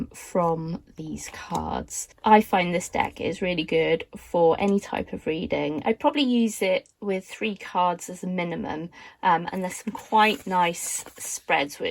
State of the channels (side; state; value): both; identical; correlation 1.00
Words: from these cards. I find this deck is really good for any type of reading. I'd probably use it with 3 cards as a minimum, and there's some quite nice spreads